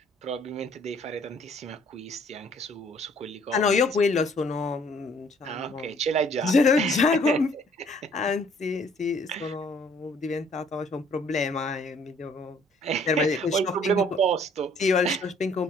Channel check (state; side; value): normal; both; correlation 0.60